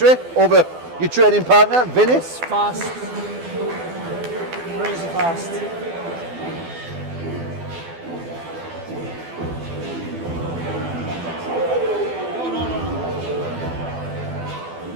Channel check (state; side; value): late; left; 12 ms